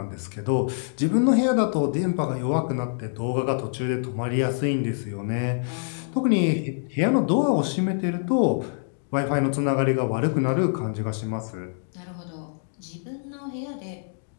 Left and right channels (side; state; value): right; silent; digital silence